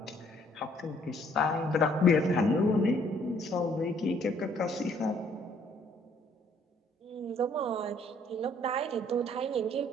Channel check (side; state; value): both; normal; correlation 0.63